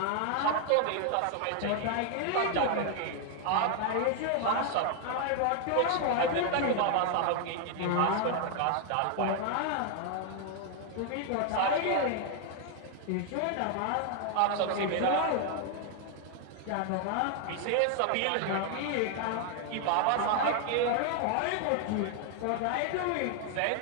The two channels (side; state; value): both; different; correlation 0.00